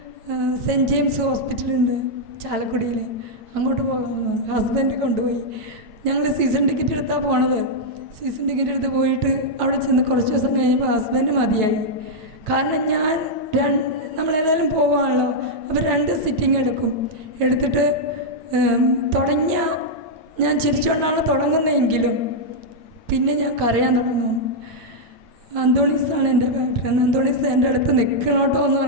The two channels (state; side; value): late; left; 8.7 ms